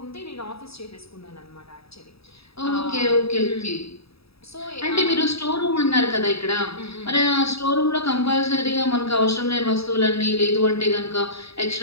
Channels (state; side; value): late; right; 0.77 ms